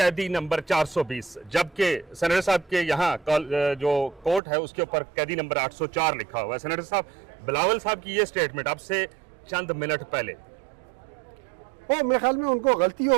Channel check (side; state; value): left; drops out; at 4.4 s